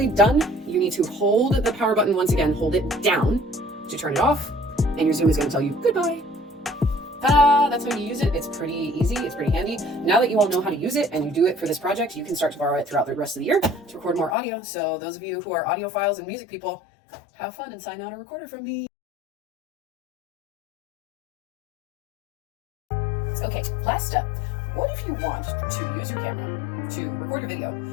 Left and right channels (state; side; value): drops out; right; at 14.4 s